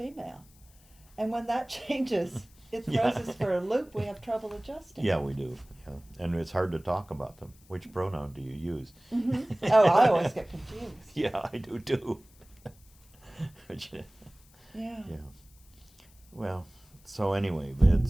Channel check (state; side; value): noise; left; hiss, 28 dB below the sound